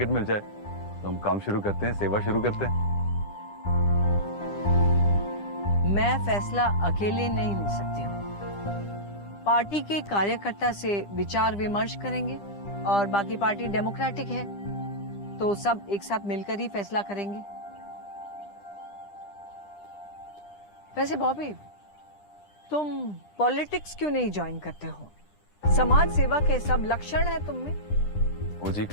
मिल जाए तो हम काम शुरू करते हैं, सेवा शुरू करते हैं। मैं फैसला अकेले नहीं ले सकती हूँ। पार्टी के कार्यकर्ता से विचार विमर्श करेंगे और बाकी पार्टी डेमोक्रेटिक है तो सब एक साथ मिलकर ही फैसला करेंगे। वैसे बॉबी, तुम पॉलिटिक्स क्यों नहीं ज्वाइन करते हो? समाज सेवा के सब लक्षण है तुम में। वो जी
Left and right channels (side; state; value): right; late; 10 ms